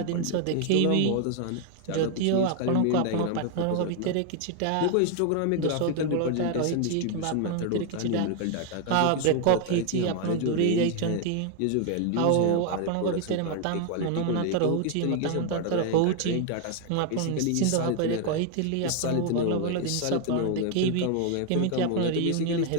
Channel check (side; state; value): both; different; correlation 0.00